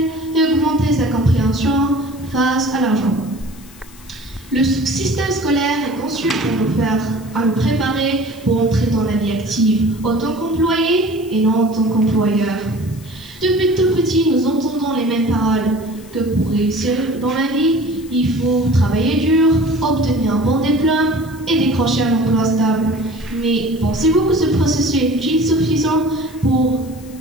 et augmenter sa compréhension face à l'argent. Le système scolaire est conçu pour nous préparer pour entrer dans la vie active en tant qu'employé et non en tant qu'employeur. Depuis tout petit, nous entendons les mêmes paroles que pour réussir dans la vie, il faut travailler dur, obtenir un bon diplôme et décrocher un emploi stable. Mais pensez-vous que ce processus est suffisant pour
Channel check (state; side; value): noise; left; hiss, 23 dB below the sound